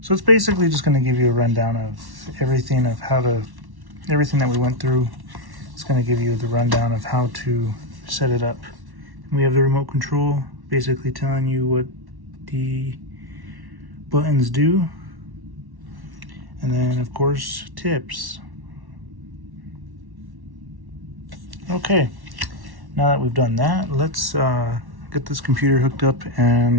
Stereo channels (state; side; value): late; left; 1.1 ms